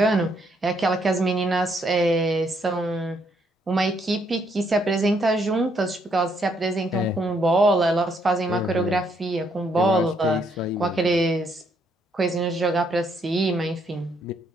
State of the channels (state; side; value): normal; both; correlation 0.72